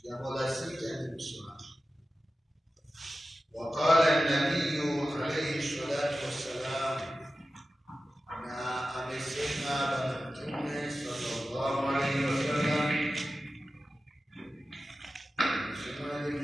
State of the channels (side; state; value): both; normal; correlation 0.94